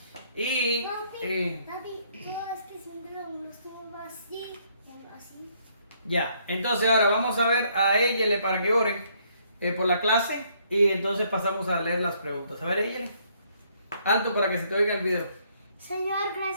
Y Papi, todo es que siempre lo estuvo así. ya, entonces ahora vamos a ver a Eyele para que oren por la clase y entonces pasamos a leer las preguntas. A ver, Eyele, alto para que se te oiga el video. Señor,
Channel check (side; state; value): both; inverted; correlation -0.68